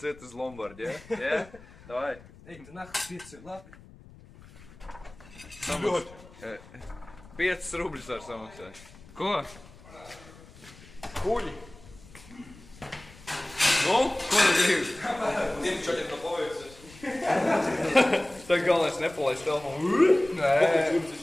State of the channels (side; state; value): left; noise; rumble, 21 dB below the sound